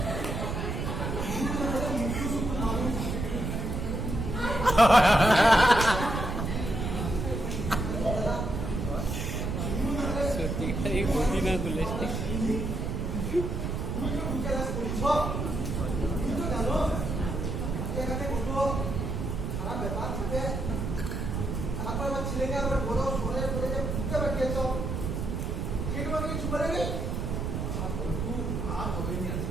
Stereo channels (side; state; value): right; noise; rumble, 2 dB below the sound